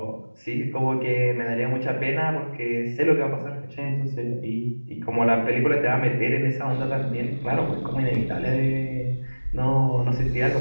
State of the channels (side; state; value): both; inverted; correlation -1.00